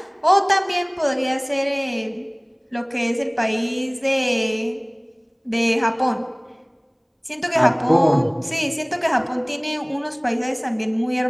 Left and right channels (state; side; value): identical; both; correlation 1.00